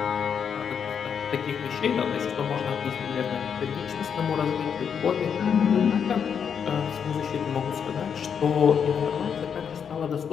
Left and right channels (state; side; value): quieter; right; 7.3 dB